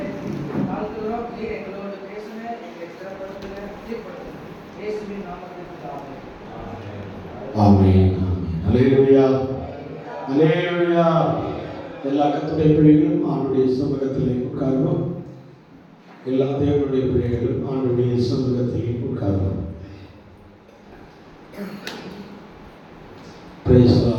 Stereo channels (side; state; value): both; identical; correlation 1.00